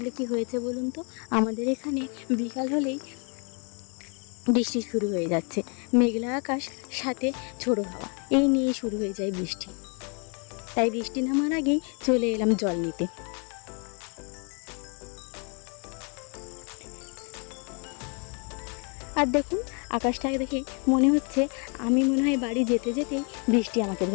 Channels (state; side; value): quieter; right; 36.8 dB